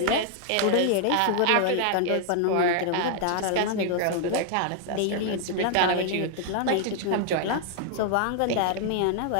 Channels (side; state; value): both; different; correlation 0.00